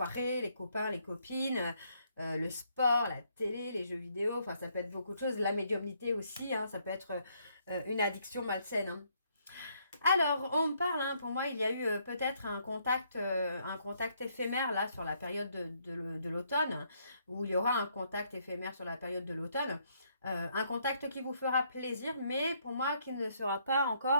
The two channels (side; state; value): both; inverted; correlation -0.71